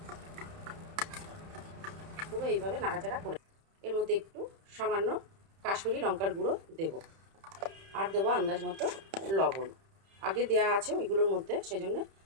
পুরো এইভাবে নাড়াচাড়া করে এর মধ্যে একটু সামান্য কাশ্মীরি লঙ্কার গুঁড়ো দেব, আর দেবো আন্দাজ মতো লবণ। আগে দেয়া আছে ওইগুলোর মধ্যে, সেজন্য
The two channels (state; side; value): late; left; 31 ms